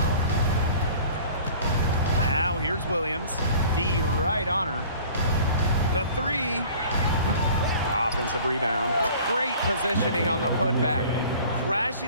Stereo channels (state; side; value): inverted; both; correlation -0.47